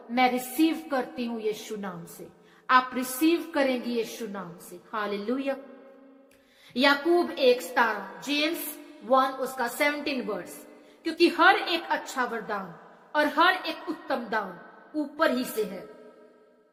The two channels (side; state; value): both; identical; correlation 1.00